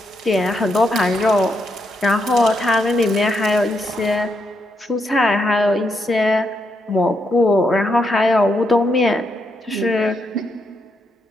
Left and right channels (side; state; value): both; normal; correlation 0.80